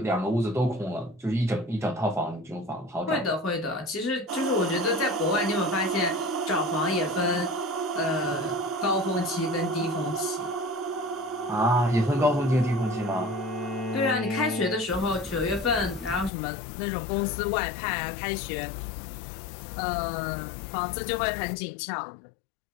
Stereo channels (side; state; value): right; drops out; at 16.3 s